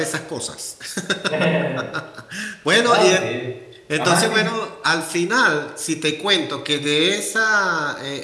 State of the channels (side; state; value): both; identical; correlation 1.00